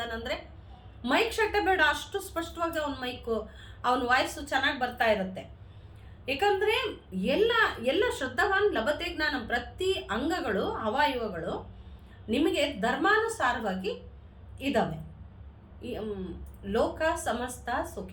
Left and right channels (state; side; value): identical; both; correlation 1.00